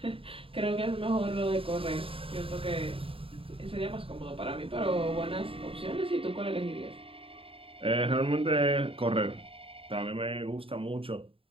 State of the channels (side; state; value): left; late; 0.27 ms